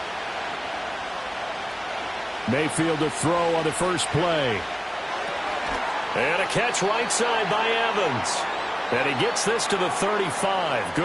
Mayfield to throw on the first play. And a catch right side by Evans. And he gets this to the 35.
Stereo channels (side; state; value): both; identical; correlation 1.00